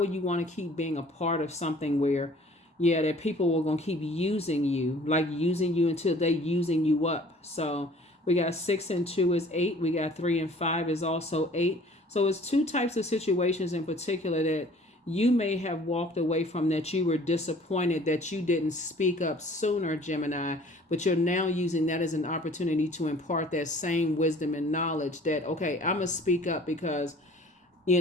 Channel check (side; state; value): both; normal; correlation 0.51